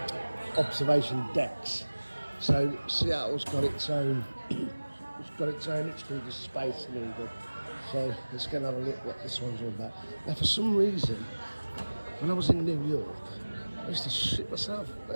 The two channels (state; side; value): inverted; both; correlation -1.00